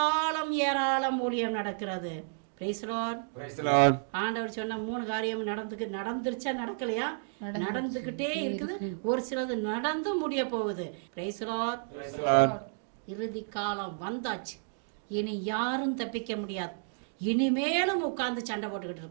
ஊழியம் நடக்கிறது. ஆண்டவர் சொன்ன 3 காரியம் நடந்துருச்சா? நடக்கலையா? நடந்துகிட்டே இருக்குது. ஒரு சிலது நடந்து முடிய போகுது. இறுதி காலம் வந்தாச்சு. இனி யாரும் தப்பிக்க முடியாது. இனிமேலும் உட்கார்ந்து சண்டை போட்டுக்கிட்டு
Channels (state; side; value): silent; left; digital silence